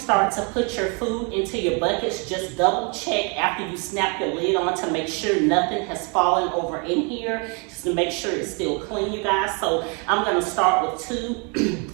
to put your food into your buckets, just double check after you snap your lid on to make sure nothing has fallen over in here, just to make sure it's still clean, you guys. So I'm gonna start with 2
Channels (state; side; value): quieter; left; 34.3 dB